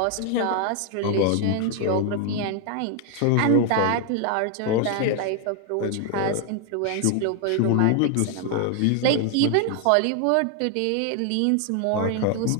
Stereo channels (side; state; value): both; different; correlation 0.01